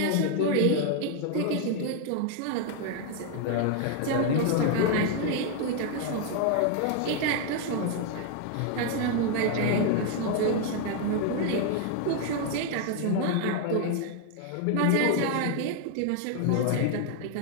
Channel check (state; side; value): different; both; correlation 0.00